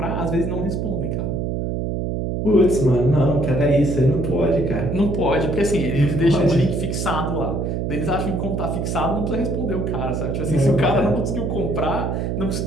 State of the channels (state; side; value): noise; right; hum, 1 dB below the sound